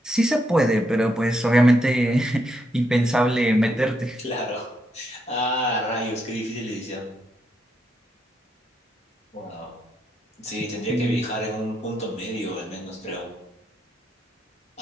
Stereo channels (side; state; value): both; normal; correlation 0.79